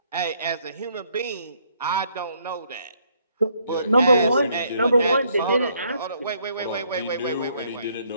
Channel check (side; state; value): both; inverted; correlation -0.69